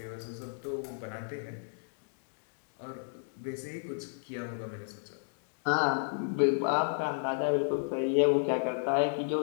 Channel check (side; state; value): right; silent; digital silence